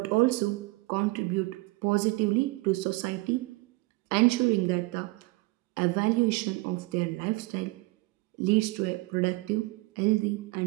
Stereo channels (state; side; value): quieter; left; 23.3 dB